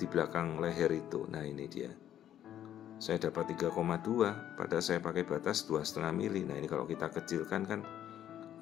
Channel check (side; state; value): right; quieter; 11.0 dB